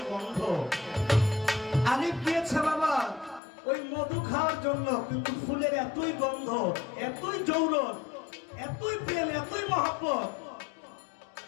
গন্ধ। আলিফ গিয়েছে বাবা ওই মধু খাওয়ার জন্য, কিন্তু ফুলের এতই গন্ধ, এতই জৌলস, এতই প্রেম, এতই মহব্বত।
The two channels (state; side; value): drops out; right; at 3.4 s